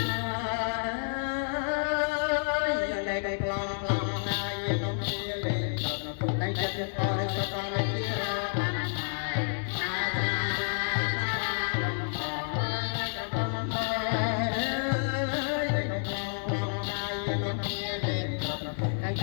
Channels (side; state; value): right; silent; 58 dB below the other